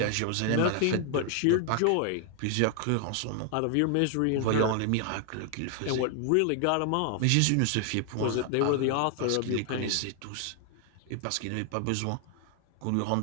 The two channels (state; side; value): different; both; correlation 0.00